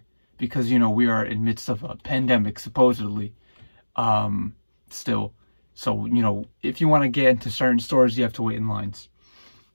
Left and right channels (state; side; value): inverted; both; correlation -1.00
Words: because you know we are in midst of a pandemic supposedly still. So, you know, if you want to get into certain stores, you have to wait in lines.